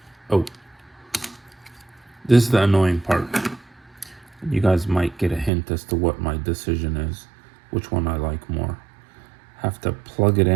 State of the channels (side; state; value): left; drops out; at 5.5 s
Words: Oh, this is the annoying part. You guys might get a hint as to what my decision is, which one I like more. Have to plug it